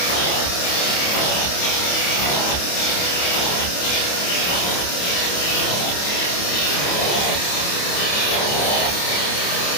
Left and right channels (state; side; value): late; right; 28 ms